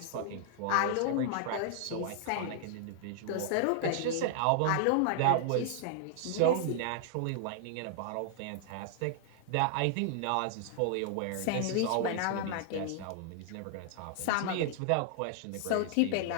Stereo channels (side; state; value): both; different; correlation -0.01